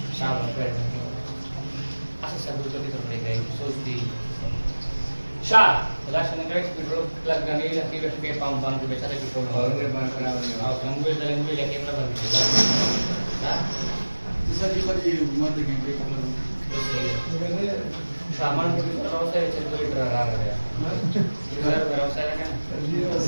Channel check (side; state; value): both; inverted; correlation -1.00